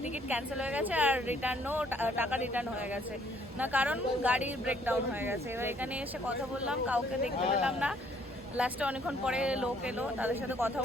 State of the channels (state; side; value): normal; both; correlation 0.64